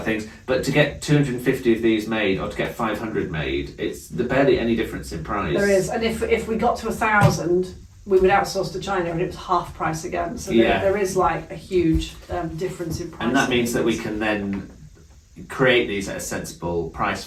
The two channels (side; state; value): both; identical; correlation 1.00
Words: things, but to get 250 of these made or to get 500 made, it's barely any difference in price. There is, and if we got to 1,000, we would outsource to China and it was half price again. So there is like a huge difference in price. And that means that we can then create these at a sensible price